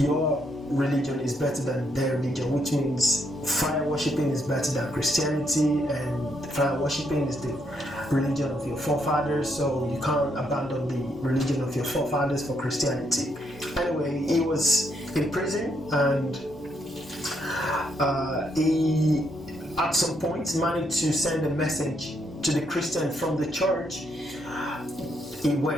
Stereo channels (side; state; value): right; noise; hum, 26 dB below the sound